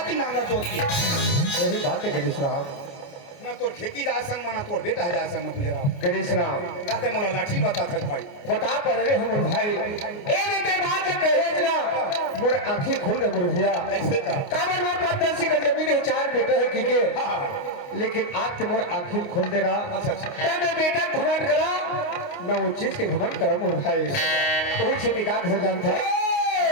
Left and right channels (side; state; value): right; late; 29 ms